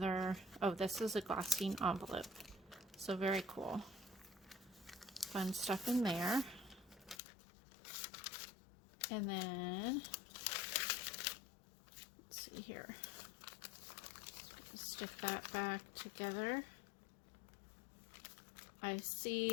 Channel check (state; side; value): drops out; right; at 7.2 s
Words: oh, this is a glassine envelope. So very cool. Fun stuff in there. And then let's see here. Stick that back together. I